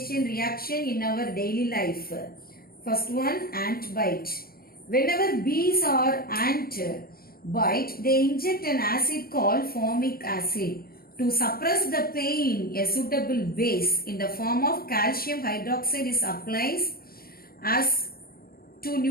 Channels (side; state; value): right; late; 0.43 ms